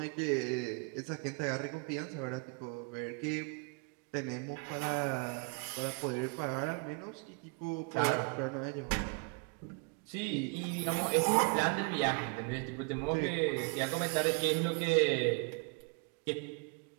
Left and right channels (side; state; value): left; quieter; 34.1 dB